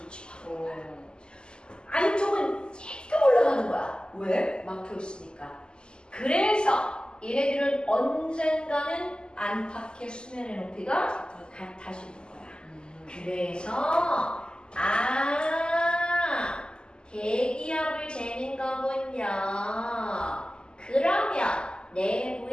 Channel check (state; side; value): late; right; 0.048 ms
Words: 안쪽은 조금 올라가는 거야. 왜? 막혀 있으니까. 그래서 얘네들은 언젠가는 안팎의 수면의 높이가 같아지는 거야. 그래서 대기압을 재는 거군요. 그러면